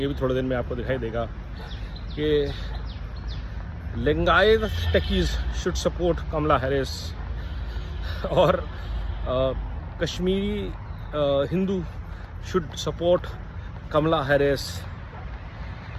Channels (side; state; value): both; identical; correlation 1.00